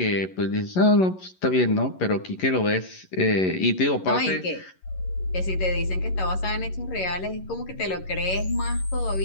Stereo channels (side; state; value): right; late; 11 ms